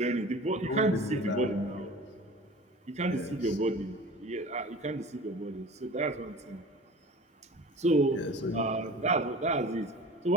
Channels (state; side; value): normal; both; correlation 0.39